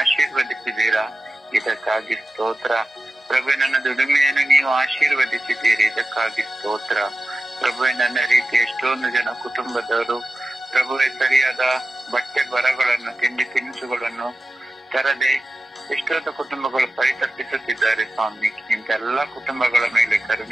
ಇದಕ್ಕಾಗಿ ಸ್ತೋತ್ರ. ಪ್ರಭುವೆ, ನನ್ನ ದುಡಿಮೆಯನ್ನು ನೀವು ಆಶೀರ್ವದಿಸಿದ್ದೀರಿ, ಇದಕ್ಕಾಗಿ ಸ್ತೋತ್ರ. ಪ್ರಭುವೆ, ನನ್ನ ರೀತಿ ಎಷ್ಟೊಂದು ಜನ ಕುಟುಂಬದವರು ಪ್ರಭುವೆ ಸರಿಯಾದ ಬಟ್ಟೆ ಬರಗಳನ್ನು ತಿಂಡಿ ತಿನಿಸುಗಳನ್ನು ತರದೆ ಎಷ್ಟೊಂದು ಕುಟುಂಬಗಳು ಪರಿತಪಿಸುತ್ತಿದ್ದಾರೆ ಸ್ವಾಮಿ. ಇಂತೆಲ್ಲ ಕುಟುಂಬಗಳ ಮೇಲೆ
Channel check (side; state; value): both; normal; correlation 0.93